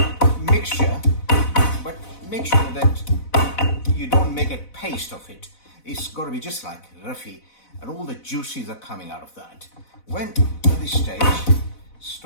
mixture, but make sure that you don't make a paste of it. It's got to be just like roughy, and all the juices are coming out of that. When at this stage,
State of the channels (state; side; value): late; right; 4.0 ms